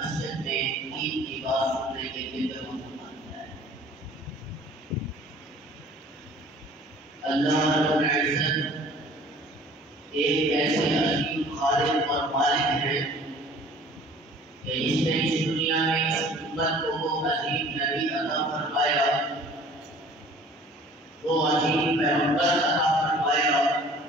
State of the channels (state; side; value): normal; both; correlation 0.50